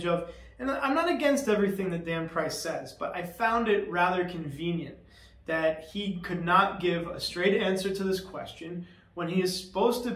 of. And I'm not against everything that Dan Price says, but I found it rather convenient that he could not give a straight answer to this question when he is supposed to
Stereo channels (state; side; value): identical; both; correlation 1.00